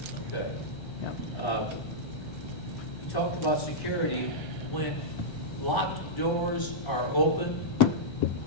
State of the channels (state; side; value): late; right; 1.3 ms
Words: Okay. Yeah. You talked about security. When locked doors are open,